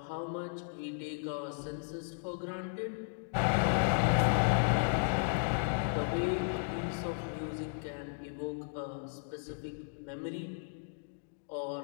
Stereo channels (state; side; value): silent; right; digital silence